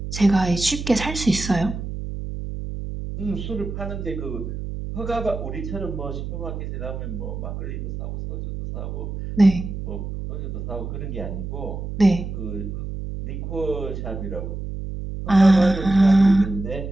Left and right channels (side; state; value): right; noise; hum, 6 dB below the sound